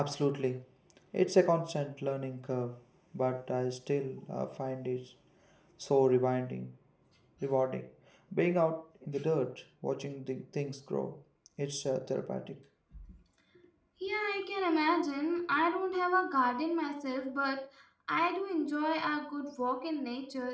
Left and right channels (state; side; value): identical; both; correlation 1.00